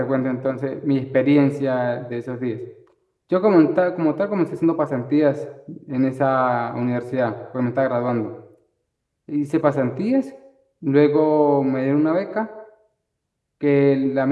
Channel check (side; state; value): both; identical; correlation 1.00